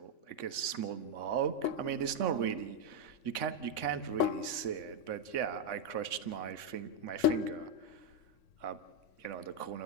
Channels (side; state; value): right; late; 3.6 ms